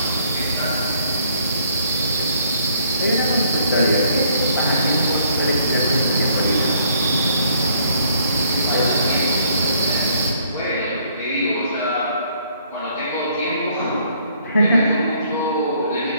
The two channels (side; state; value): both; inverted; correlation -0.65